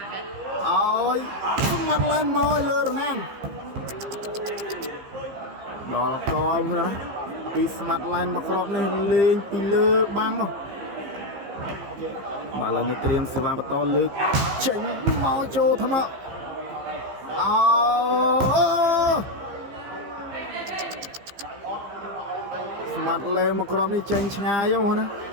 ឲ្យស្មាត់ឡែនមកលើរណាំដល់កលណាពីស្មាត់ឡែនមកគ្របនេះលេងពីលើបាំង បាល់ឡើងនេះត្រៀមសេវាបន្តលើកចេញមកចូលថ្នាក់ស្មាត់លេមកក្រុមនេះចេញឆ្ងាយហ៎ណា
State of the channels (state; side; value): late; left; 15 ms